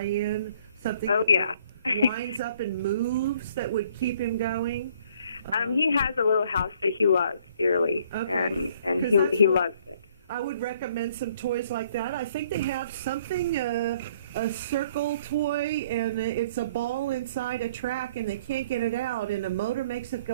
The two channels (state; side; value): inverted; both; correlation -0.60